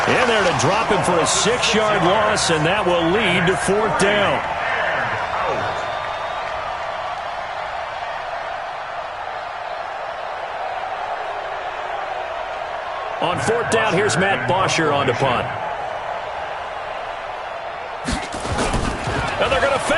in there to drop him for a 6-yard loss, and that will lead to 4th down. On 4th down, here's Matt Bosher on to punt. And they're going to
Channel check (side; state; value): both; identical; correlation 1.00